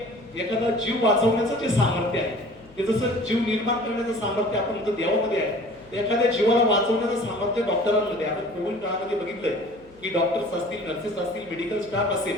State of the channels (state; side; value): noise; left; hum, 27 dB below the sound